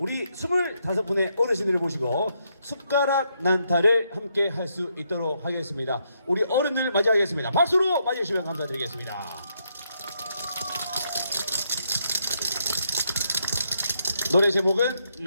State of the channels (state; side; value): inverted; both; correlation -0.77